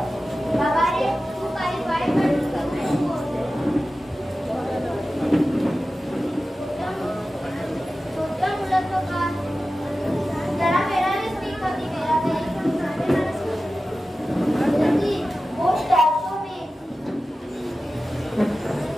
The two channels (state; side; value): normal; both; correlation 0.95